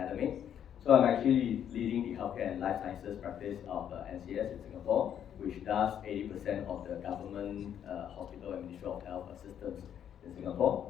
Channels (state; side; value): quieter; right; 9.4 dB